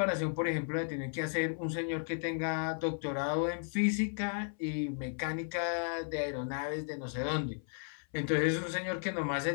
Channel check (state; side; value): silent; right; 55 dB below the other